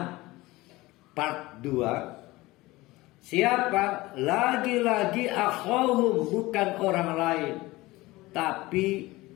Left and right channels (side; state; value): right; quieter; 19.9 dB